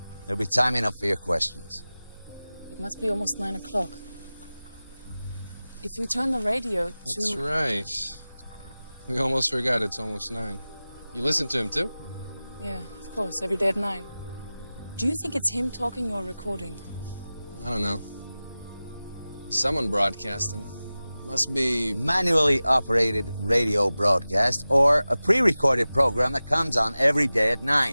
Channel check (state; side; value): inverted; both; correlation -0.97